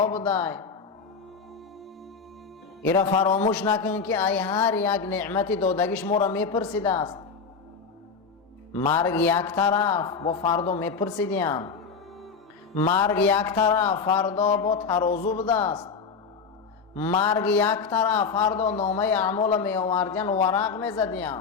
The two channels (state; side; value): quieter; right; 5.4 dB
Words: بده. ایرا فراموش نکن که ای هر یک نعمت دادگیش ما را میپرسیده است. مرگ یک طرف با فردا میپرسیدیم، مرگ یک طرف فردا با ترازو بوده است، مرگ یک طرف فردا نامه اعمال می آوردین ورق می زدین.